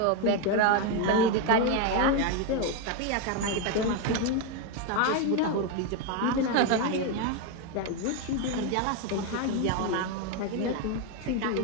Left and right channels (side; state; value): both; different; correlation 0.02